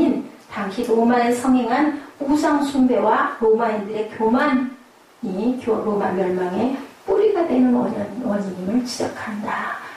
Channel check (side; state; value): both; identical; correlation 1.00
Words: 당시 로마에 성행한 우상숭배와 로마인들의 교만이 로마 멸망의 뿌리가 되는 원인임을 지적한다.